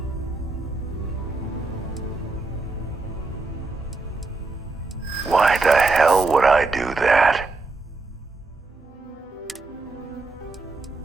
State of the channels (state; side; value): quieter; left; 3.6 dB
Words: Why the hell would I do that?